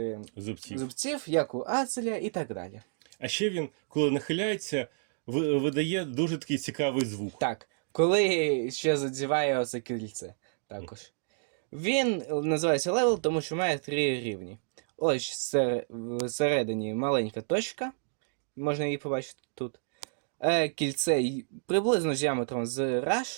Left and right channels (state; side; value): silent; left; digital silence